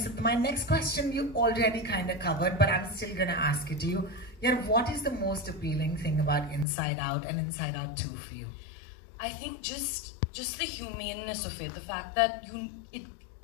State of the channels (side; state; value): right; drops out; at 6.7 s